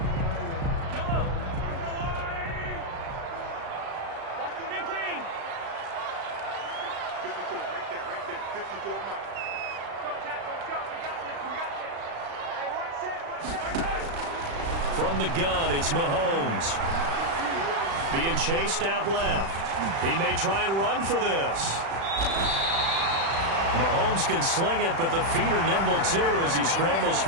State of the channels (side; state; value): left; late; 36 ms